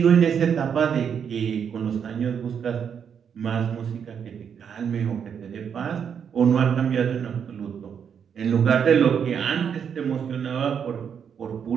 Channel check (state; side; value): quieter; left; 7.6 dB